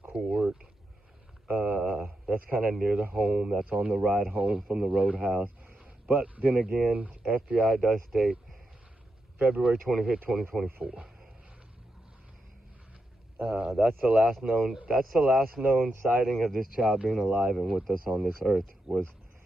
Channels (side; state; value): both; normal; correlation 0.85